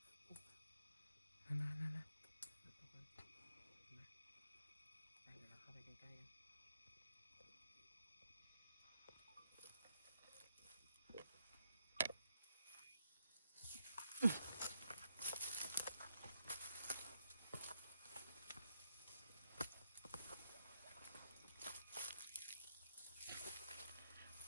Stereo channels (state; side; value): inverted; both; correlation -0.80